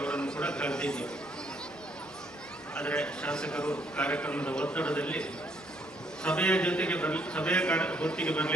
ಕೂಡ ಕರೆದಿದ್ದೀವಿ. ಆದರೆ ಶಾಸಕರು ಕಾರ್ಯಕ್ರಮದ ಒತ್ತಡದಲ್ಲಿ ಸಭೆಯ ಹೊತ್ತಿಗೆ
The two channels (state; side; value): normal; both; correlation 0.69